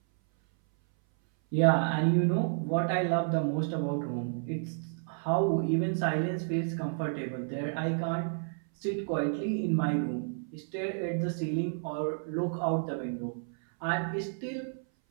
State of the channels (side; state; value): left; silent; 57 dB below the other